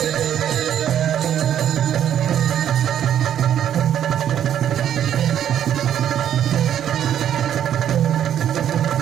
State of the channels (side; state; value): left; quieter; 10.1 dB